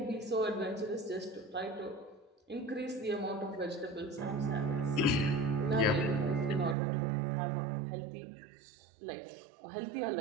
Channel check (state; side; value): drops out; left; at 6.8 s